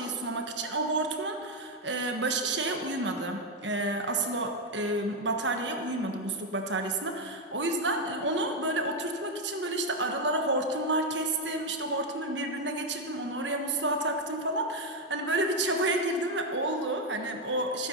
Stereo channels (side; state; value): both; normal; correlation 0.04